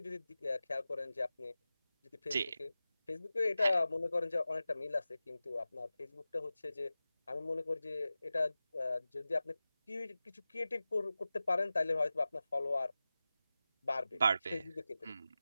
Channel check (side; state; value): both; inverted; correlation -0.94